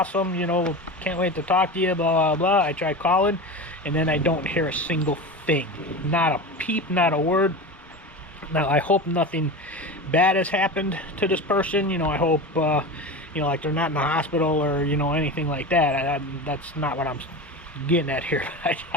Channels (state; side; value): normal; both; correlation 0.27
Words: you know, can't wait to talk to you, blah, blah, blah. I try calling, and then I don't hear a single thing. Not a peep, not a word. Now, I hope nothing bad has happened to this person. You know, I hope, you know, like they're not in the hospital or, you know, anything like that. That's not what I'm getting at here.